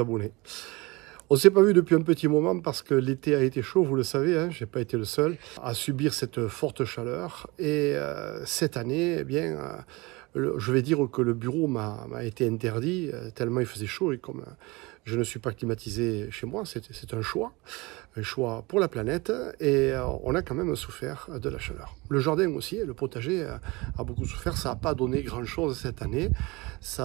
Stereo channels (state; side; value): quieter; left; 24.1 dB